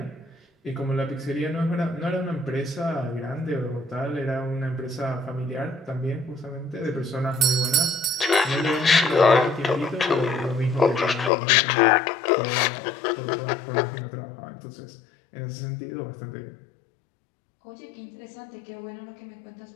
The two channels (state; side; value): drops out; right; at 11.3 s